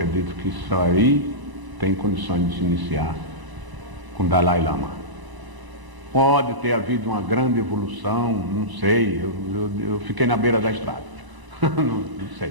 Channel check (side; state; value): left; late; 1.0 ms